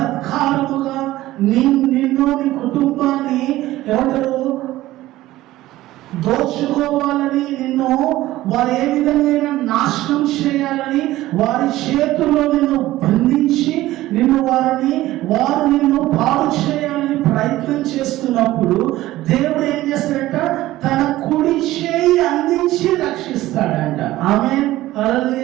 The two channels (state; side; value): quieter; left; 16.2 dB